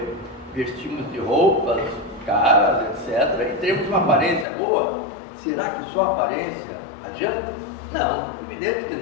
vestirmos de roupas caras, etc., e termos uma aparência boa. Será que só a aparência adianta? Não, evidente que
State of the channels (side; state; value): right; drops out; at 4.5 s